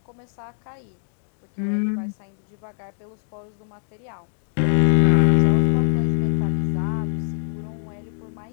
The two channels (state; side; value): silent; right; 63 dB below the other